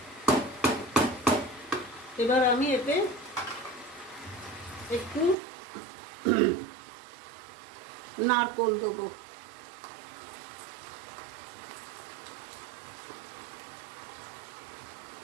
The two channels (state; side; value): drops out; left; at 5.4 s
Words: এবার আমি এতে একটু নারকোল দেবো।